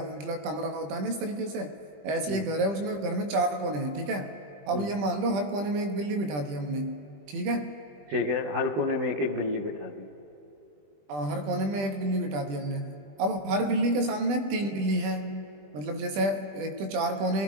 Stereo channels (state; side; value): late; left; 20 ms